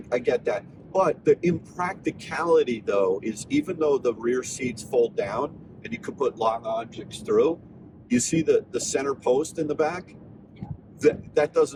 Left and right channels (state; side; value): identical; both; correlation 1.00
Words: get that. But the impracticality, though, is even though the rear seats fold down and you could put long objects through, you see the center post in the back? Yeah. That